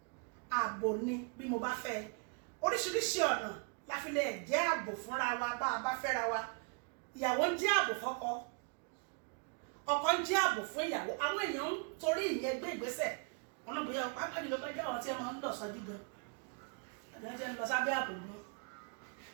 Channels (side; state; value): left; quieter; 35.5 dB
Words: ààbò ni bí mo bá fẹ́ oríṣiríṣi ọ̀nà la fi lè jẹ́ ààbò fúnra wa bá a bá fẹ́ra wa ìyàwó ń jẹ́ ààbò fọ́kọ ọkọ ń jẹ́ ààbò fún ìyàwó àwọn èèyàn ń torí ìyẹn gbé ìgbésẹ̀ wọn náà bóyá pápá ìlú bá jẹ́ àwọn tí wọ́n ń lọ sọ́jú gan àbí wọ́n ń lọ sábẹ́ ààbò gan